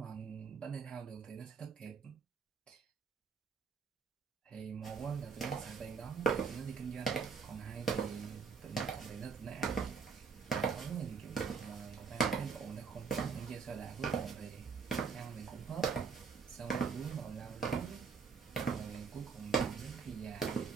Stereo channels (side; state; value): left; quieter; 5.7 dB